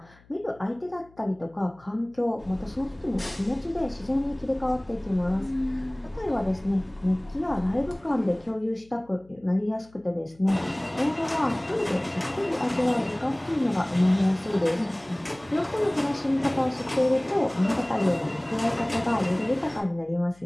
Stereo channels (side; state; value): left; noise; hum, 28 dB below the sound